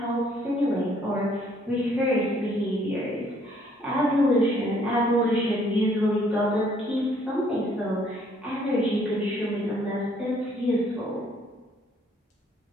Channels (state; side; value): normal; both; correlation 0.64